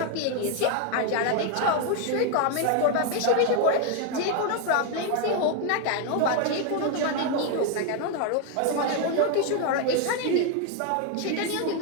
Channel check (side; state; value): both; different; correlation 0.01